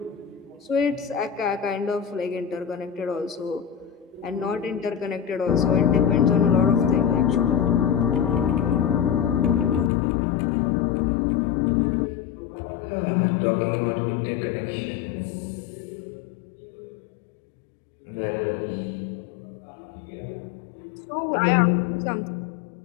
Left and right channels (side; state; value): right; drops out; at 9.9 s